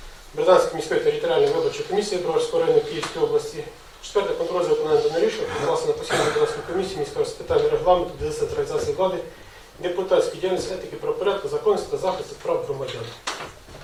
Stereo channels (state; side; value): identical; both; correlation 1.00